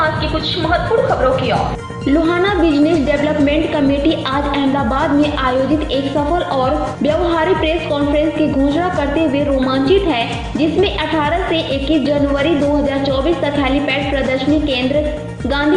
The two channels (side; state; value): both; identical; correlation 1.00